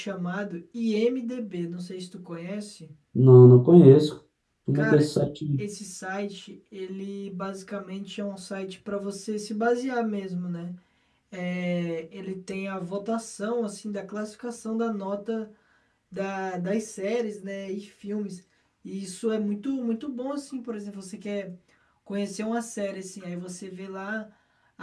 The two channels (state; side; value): identical; both; correlation 1.00